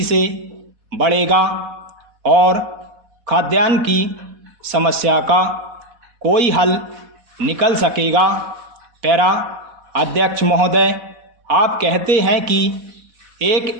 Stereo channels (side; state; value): left; late; 4.1 ms